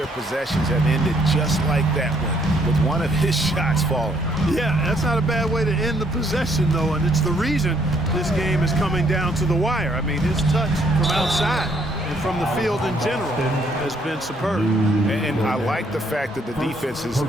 possessions have ended just like that one, with one of his shots falling. Yeah, that's not a bad way to end the possession, though, and it's the reason this game is coming down to the wire. I mean, his touch from outside and from the field in general has been superb. And I like the fact that the defense is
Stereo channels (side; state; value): both; normal; correlation 0.68